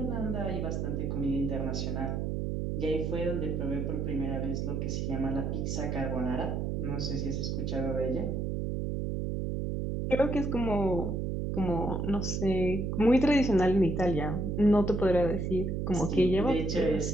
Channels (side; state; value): right; noise; hum, 1 dB below the sound